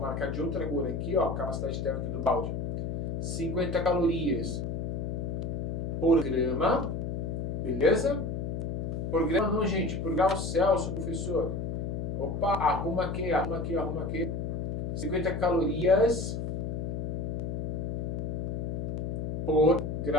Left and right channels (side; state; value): left; noise; hum, 3 dB below the sound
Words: de outra cor aqui, ó, a capacidade térmica do balde. 50 calorias por grama. Beleza? Por grama não, gente. Por grau Celsius, professor. Opa, arruma aqui. 50 calorias por